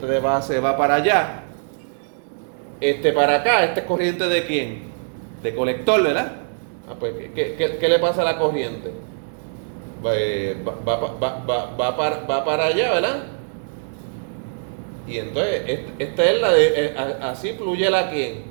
de base va para allá. Para acá, ¿esta es corriente de quién? De colector, ¿verdad? Pues, ¿qué le pasa a la corriente? Va para allá, ¿verdad? Y entonces, esta es la de, así fluye la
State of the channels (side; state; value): left; silent; digital silence